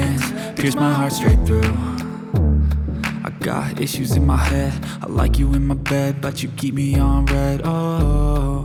pierce my heart straight through. I got issues in my head, I like you in my bed, but you keep me on red. Oh,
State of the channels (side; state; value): both; identical; correlation 1.00